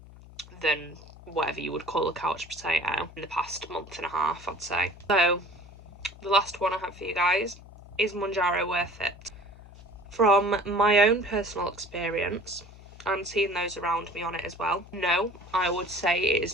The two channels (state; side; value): noise; left; hum, 19 dB below the sound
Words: than whatever you would call a couch potato in the past month and a half, I'd say. So the last one I have for you guys, is Mounjaro worth it? From my own personal experience, and seeing those around me on it as well, no, I would say it